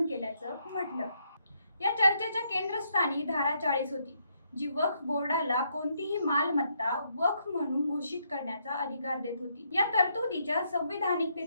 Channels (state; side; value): inverted; both; correlation -0.76